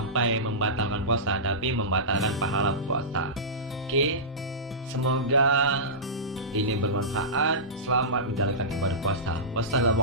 membatalkan puasa, tapi membatalkan pahala puasa. Oke, semoga ini bermanfaat. Selamat menjalankan ibadah puasa.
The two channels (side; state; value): both; normal; correlation -0.18